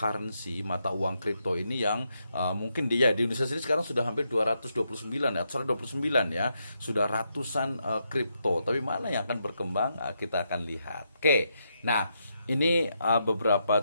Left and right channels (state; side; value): inverted; both; correlation -0.81